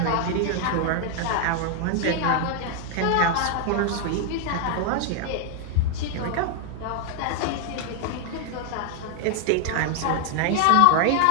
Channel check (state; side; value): different; both; correlation 0.00